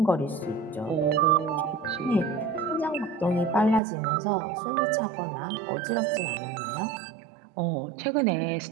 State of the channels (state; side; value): drops out; left; at 3.8 s